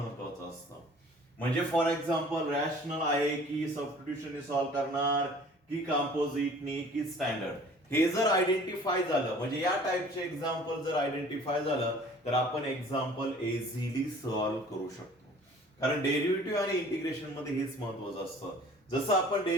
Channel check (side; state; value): both; normal; correlation 0.50